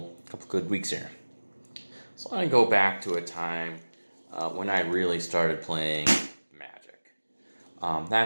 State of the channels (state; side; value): inverted; both; correlation -1.00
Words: good weeks here. So I want to go back to a time when I really started playing Magic.